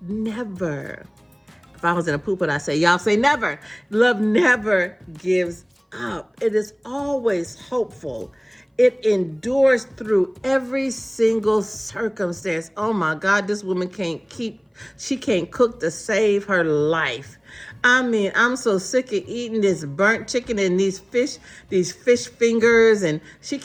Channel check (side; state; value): both; identical; correlation 1.00